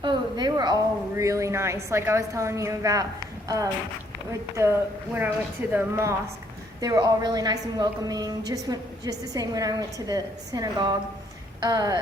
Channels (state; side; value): normal; both; correlation 0.67